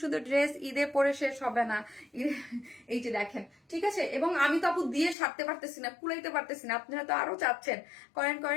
সুন্দর ড্রেস ঈদে পরে শেষ হবে না, এই যে দেখেন, ঠিক আছে। এবং আমি তো আপু দিয়ে সারতে পারতেছি না, কুলাইতে পারতেছি না, আপনারা তো আরো চাচ্ছেন, করেন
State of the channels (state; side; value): drops out; right; at 5.2 s